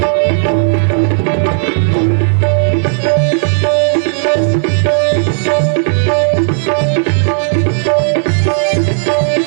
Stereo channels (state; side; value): silent; left; digital silence